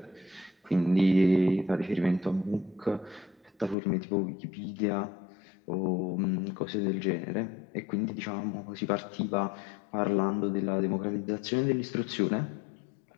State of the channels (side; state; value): right; drops out; at 3.8 s